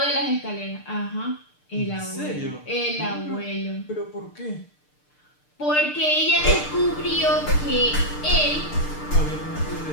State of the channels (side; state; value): right; late; 6.7 ms